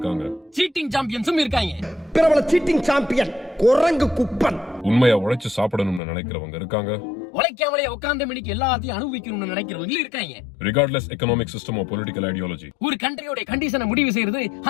சீட்டிங் சாம்பியன்ஸும் இருக்காங்க. பிரபல சீட்டிங் சாம்பியன் குரங்கு குப்பன். உண்மையா உழைச்சு சாப்பிடணும்னு நினைக்கிறவங்க இருக்காங்க, உழைக்காமலே உட்கார்ந்த மணிக்கு எல்லாத்தையும் அனுபவிக்கணும்னு நினைக்கிறவங்க இருக்காங்க. Regardless economic system of political ideology. ஒரு கண்ட்ரியோட கண்டிஷனை முடிவு செய்யறது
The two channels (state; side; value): drops out; right; at 6.0 s